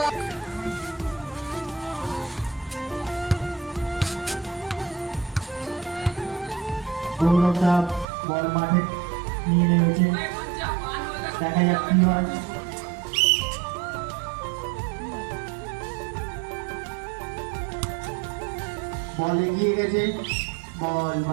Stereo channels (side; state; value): left; drops out; at 8.1 s